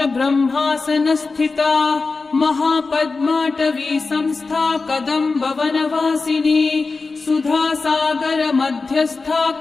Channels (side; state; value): right; quieter; 4.0 dB